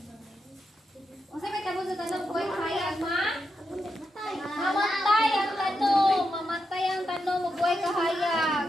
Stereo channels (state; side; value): normal; both; correlation 0.85